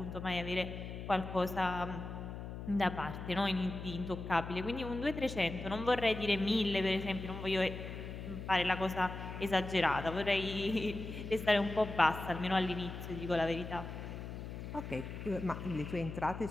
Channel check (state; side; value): noise; left; hum, 8 dB below the sound